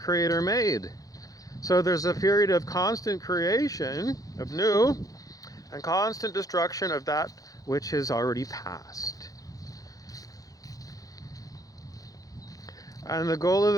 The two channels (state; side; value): late; right; 0.17 ms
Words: made. So there's a period of constant creation of new and constant destruction of that which has already passed. And the goal of